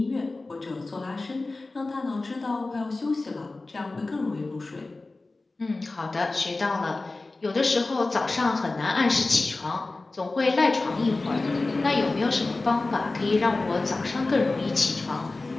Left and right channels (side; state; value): right; quieter; 3.3 dB